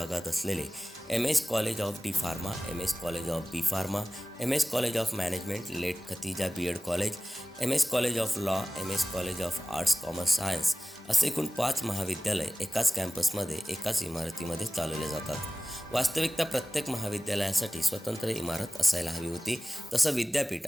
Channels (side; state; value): both; normal; correlation 0.97